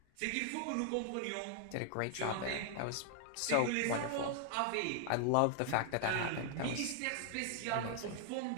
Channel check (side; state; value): both; different; correlation 0.00